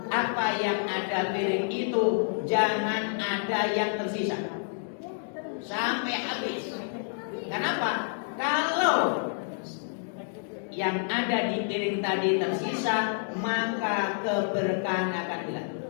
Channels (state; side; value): silent; right; digital silence